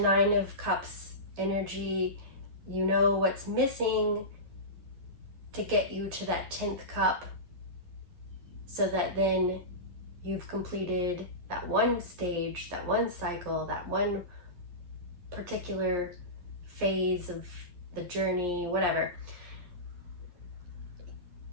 of Cups energy, you know what's missing to get you to that 10th cup, so that then you've completed that one stage, that one cycle, that one particular phase of the journey, whatever.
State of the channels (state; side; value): late; left; 11 ms